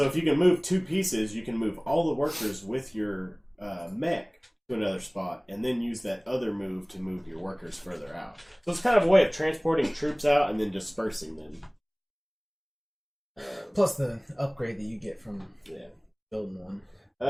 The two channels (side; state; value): both; identical; correlation 1.00